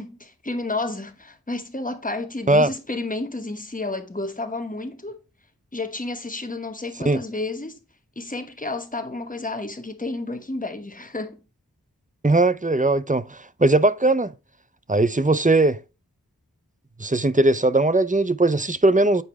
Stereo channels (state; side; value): normal; both; correlation 0.53